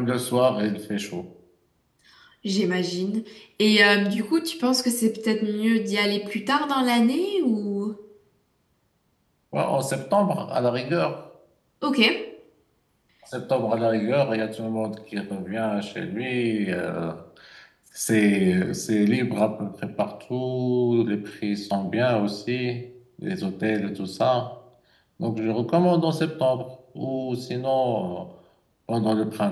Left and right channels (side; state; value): both; identical; correlation 1.00